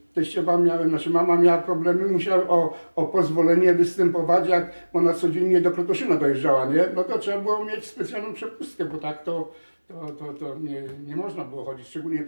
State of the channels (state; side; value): inverted; both; correlation -1.00